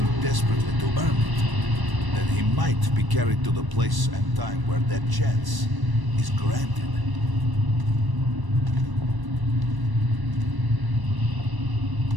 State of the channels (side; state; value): left; late; 1.1 ms